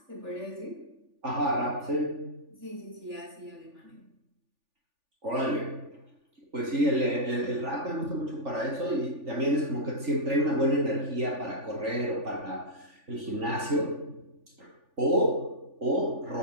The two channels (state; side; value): late; left; 3.4 ms